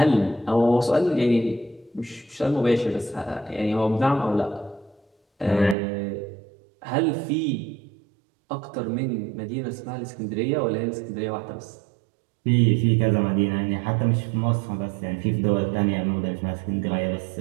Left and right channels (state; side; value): drops out; left; at 5.8 s